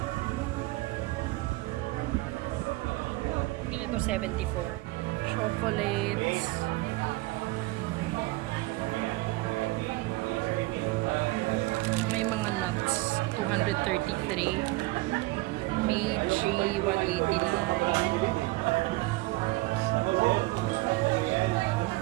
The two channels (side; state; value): left; quieter; 21.3 dB